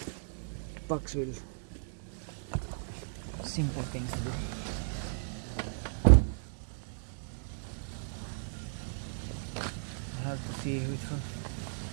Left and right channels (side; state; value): left; silent; digital silence